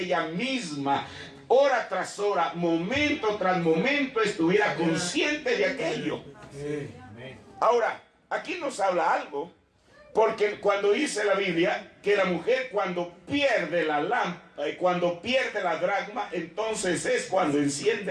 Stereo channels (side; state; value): both; identical; correlation 1.00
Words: ella misma, hora tras hora, momento tras momento, estuviera consciente de aquello. Ahora, aquí nos habla algo. Porque cuando dice la Biblia que la mujer cuando pierde la lámpara, cuando pierde la dracma, entonces es cuando